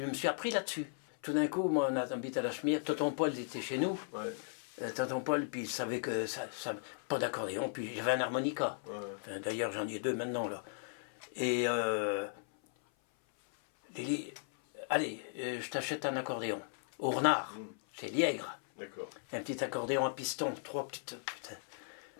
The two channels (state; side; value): silent; right; 53 dB below the other